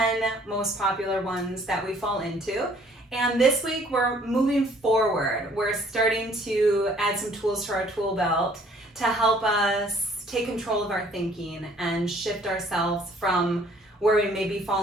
most popular ones that we fall into. And this week we're moving forward. We're starting to add some tools to our tool belt to help us take control of our thinking and shift ourselves from where we may be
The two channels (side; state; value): both; normal; correlation 0.59